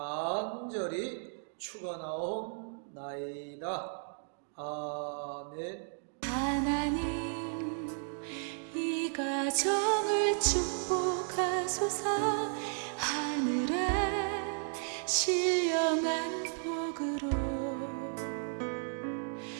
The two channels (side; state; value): left; silent; 55 dB below the other